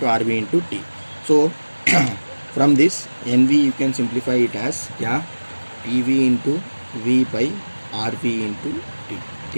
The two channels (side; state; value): both; inverted; correlation -1.00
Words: RV into T. So from this NV you can simplify it as क्या? PV into V by RV into T,